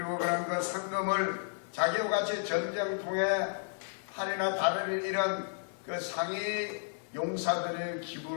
그런 그 상금을 자기와 같이 전쟁통에 팔이나 다리를 잃은 그 상위 용사들을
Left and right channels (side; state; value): right; silent; 56 dB below the other